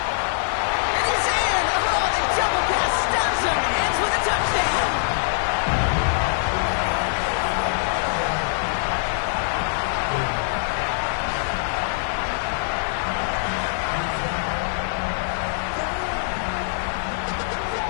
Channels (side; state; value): right; silent; 57 dB below the other